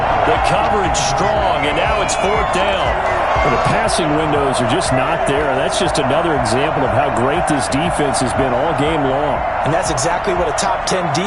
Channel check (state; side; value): identical; both; correlation 1.00